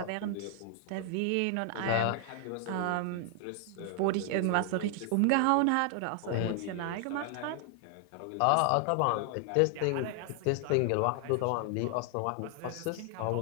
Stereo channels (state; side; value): different; both; correlation 0.00